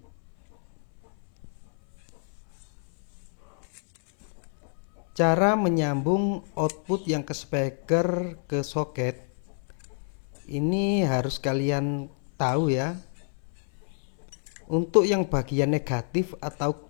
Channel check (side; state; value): right; silent; 59 dB below the other